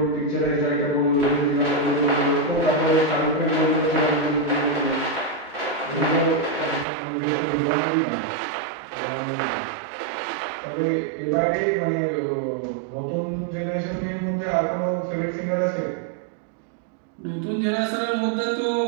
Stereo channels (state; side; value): drops out; left; at 6.9 s